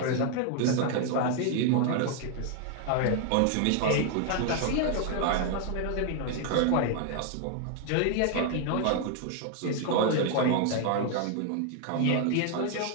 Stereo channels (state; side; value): different; both; correlation 0.00